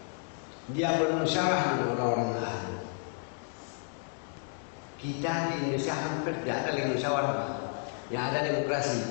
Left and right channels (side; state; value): right; silent; 57 dB below the other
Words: Dia bermusyawarah dengan orang-orang ahli. Kita di Indonesia hampir tidak ada lagi musyawarah, yang ada demokrasi.